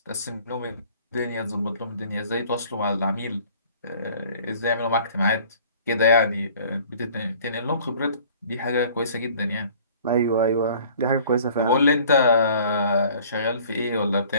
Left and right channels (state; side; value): inverted; both; correlation -0.52